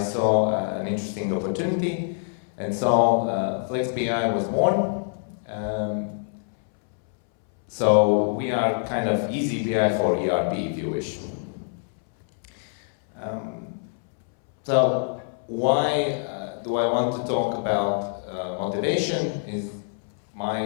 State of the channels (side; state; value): right; silent; 62 dB below the other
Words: an interesting opportunity, and so Flex.bi was born. So we are kind of eazyBI for ERP, if you wish. So why do I want to talk about motivation? Is